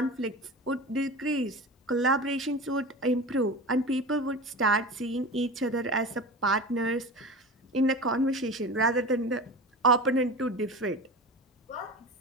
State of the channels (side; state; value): both; normal; correlation 0.31